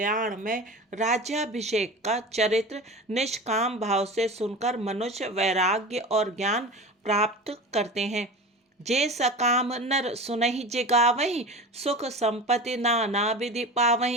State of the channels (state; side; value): normal; both; correlation 0.32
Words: में राज्याभिषेक का चरित्र निष्काम भाव से सुनकर मनुष्य वैराग्य और ज्ञान प्राप्त करते हैं। जे सकाम नर सुनहि जिगावहि, सुख संपत्ति नाना विधि